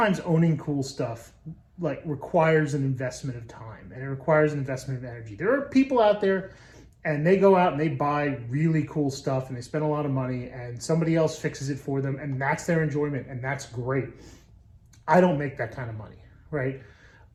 owning cool stuff requires an investment of time, and it requires an investment of energy. There are people out there and they go out and they buy really cool stuff and they spend a lot of money and somebody else fixes it for them and that's their enjoyment and that's great. I don't make that kind of money, right?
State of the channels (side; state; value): both; identical; correlation 1.00